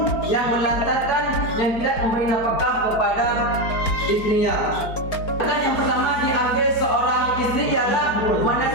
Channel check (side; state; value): right; late; 4.4 ms